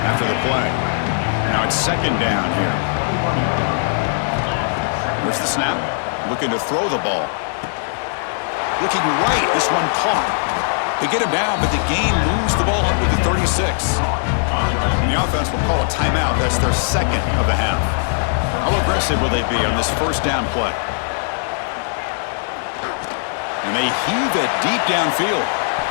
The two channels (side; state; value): right; silent; digital silence